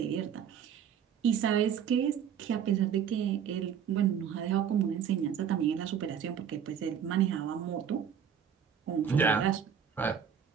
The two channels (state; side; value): quieter; left; 8.2 dB